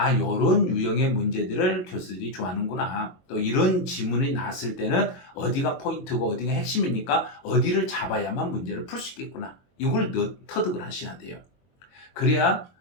요런 유형의 문제들을 교수들이 좋아하는구나. 또 이런 지문이 나왔을 때는 어디가 포인트고 어디가 핵심이니까 어디를 잡아야만 문제를 풀 수 있겠구나. 이걸 터득을 하셔야 돼요. 그래야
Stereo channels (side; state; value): right; late; 22 ms